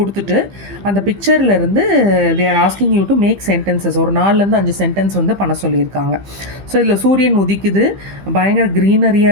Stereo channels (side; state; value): left; late; 15 ms